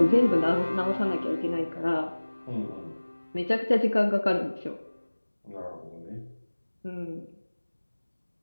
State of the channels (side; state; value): both; inverted; correlation -1.00